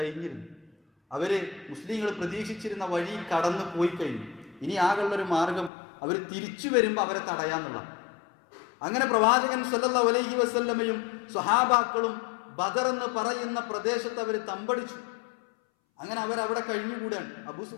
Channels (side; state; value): right; drops out; at 5.7 s